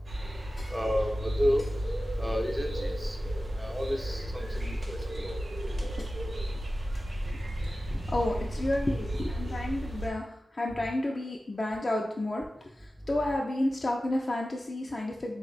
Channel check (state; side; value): normal; both; correlation 0.95